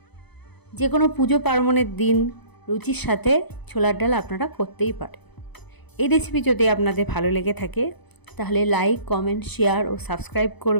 যে কোনো পুজো পার্বণের দিন রুটির সাথে ছোলার ডাল আপনারা করতেই পারেন। এই রেসিপি যদি আপনাদের ভালো লেগে থাকে তাহলে লাইক, কমেন্ট, শেয়ার ও সাবস্ক্রাইব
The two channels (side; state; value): right; late; 0.99 ms